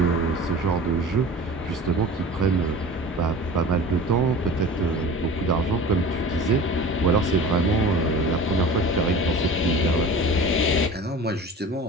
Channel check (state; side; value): normal; both; correlation 0.38